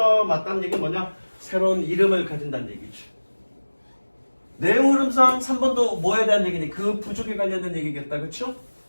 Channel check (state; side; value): inverted; both; correlation -1.00